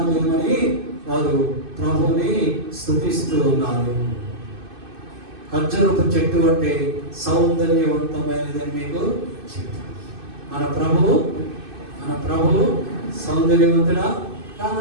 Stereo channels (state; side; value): late; left; 2.6 ms